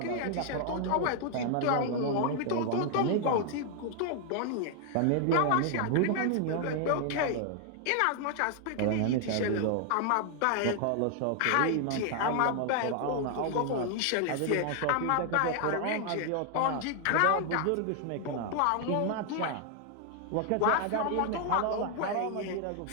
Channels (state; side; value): different; both; correlation 0.00